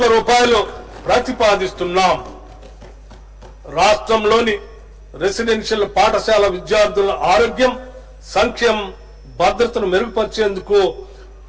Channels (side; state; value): both; identical; correlation 1.00